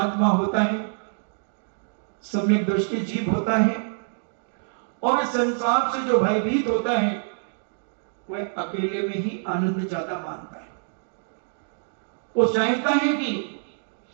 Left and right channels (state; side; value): silent; left; digital silence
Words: होता है, सम्यक दृष्टि जीव होता है और इस संसार से जो भयभीत होता है वह अकेले में ही आनंद ज्यादा मानता है। वो चाहता है कि